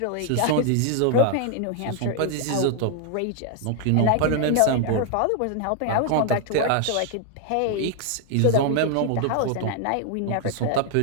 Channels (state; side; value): different; both; correlation 0.00